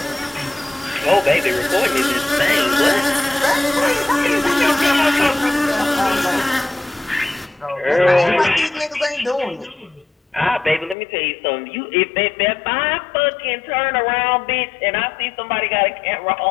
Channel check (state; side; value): drops out; right; at 11.0 s